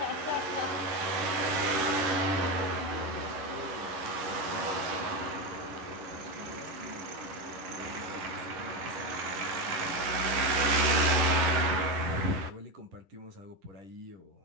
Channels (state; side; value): late; left; 11 ms